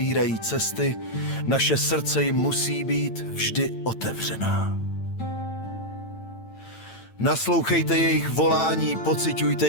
cesty, naše srdce jim musí být vždy otevřená. Naslouchejte jejich volání, pociťujte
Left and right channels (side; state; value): right; late; 8.9 ms